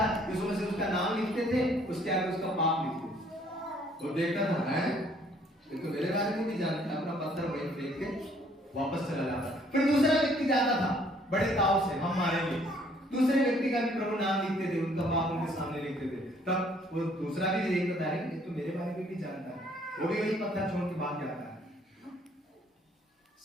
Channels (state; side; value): normal; both; correlation 0.62